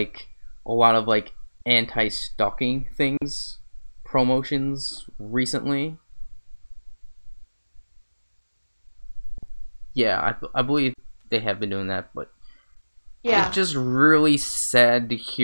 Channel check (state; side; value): inverted; both; correlation -1.00